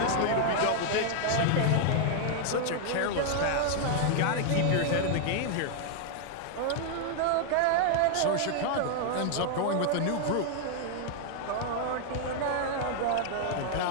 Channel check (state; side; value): different; both; correlation 0.00